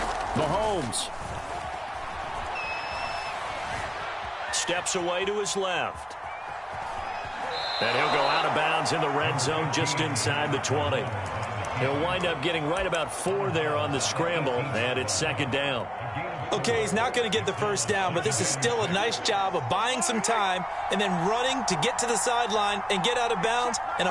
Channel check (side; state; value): both; identical; correlation 1.00